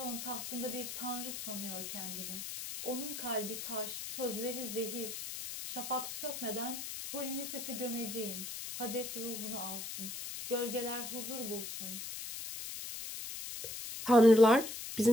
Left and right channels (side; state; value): left; noise; hiss, 7 dB below the sound